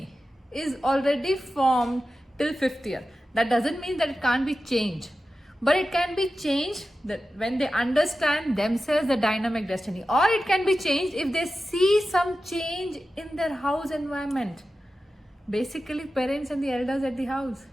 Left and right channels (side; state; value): both; normal; correlation 0.93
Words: is already formed till 5th year. That doesn't mean that it can't be changed, but it can be changed that when they understand themselves, the dynamic destiny, or it can be changed if they see some change in their house environment. Basically, parents and the elders at the house.